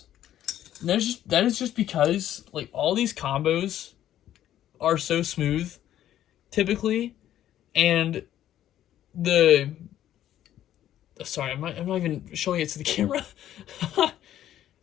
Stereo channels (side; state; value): right; quieter; 11.9 dB